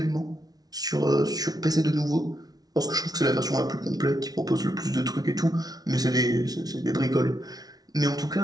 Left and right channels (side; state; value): left; late; 0.19 ms